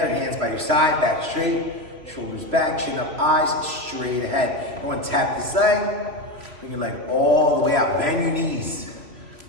hands by your side, back straight, shoulders back, chin up, eyes straight ahead. Everyone tap this side. Bring your leg all the way out. Bend your knees.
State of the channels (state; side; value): late; left; 3.0 ms